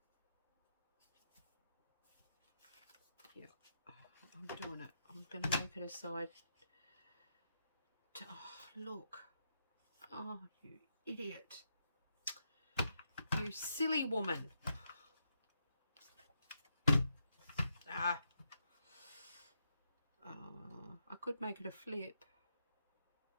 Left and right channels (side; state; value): both; inverted; correlation -0.82